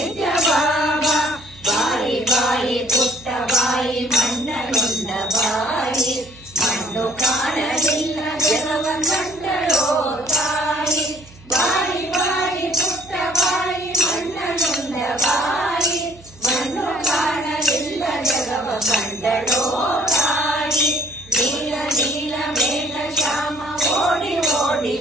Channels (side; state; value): right; noise; hum, 23 dB below the sound